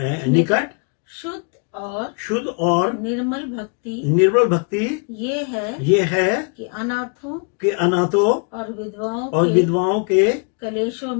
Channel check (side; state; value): right; quieter; 39.5 dB